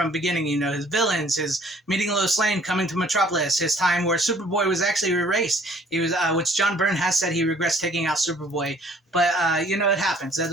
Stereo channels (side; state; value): both; normal; correlation 0.57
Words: beginning, his villains, his meeting Lois Lane, coming to Metropolis, his time where Superboy was actually erased. He was, which John Byrne has said he regrets taking out Superboy. But, it happens. That's